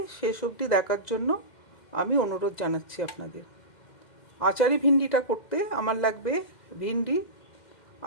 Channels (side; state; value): right; late; 2.1 ms